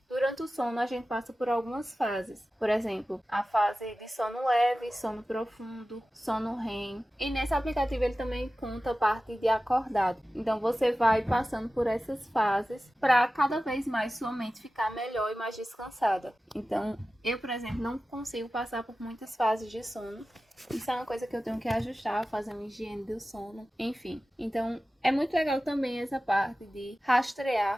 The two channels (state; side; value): normal; both; correlation 0.95